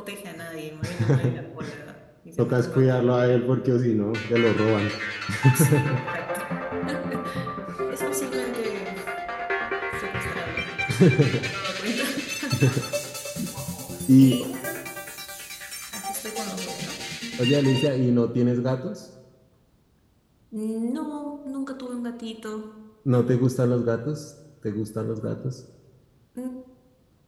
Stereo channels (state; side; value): identical; both; correlation 1.00